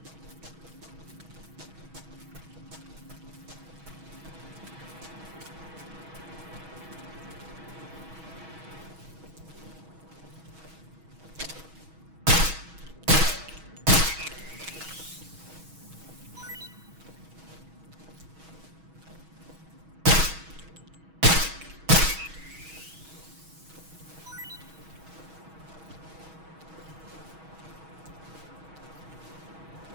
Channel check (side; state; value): left; late; 6.2 ms